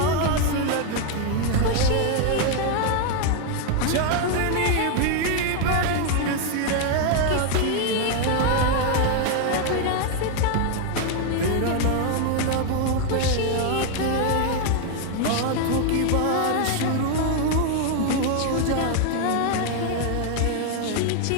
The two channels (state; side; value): different; both; correlation 0.01